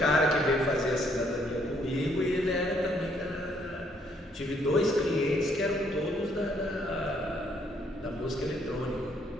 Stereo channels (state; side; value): normal; both; correlation 0.68